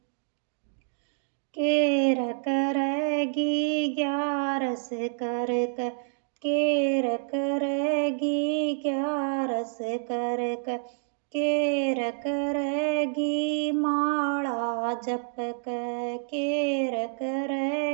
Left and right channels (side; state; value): left; silent; digital silence